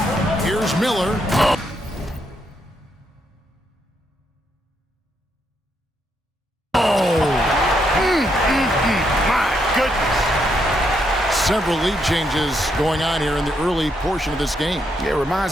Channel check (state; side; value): normal; both; correlation 0.77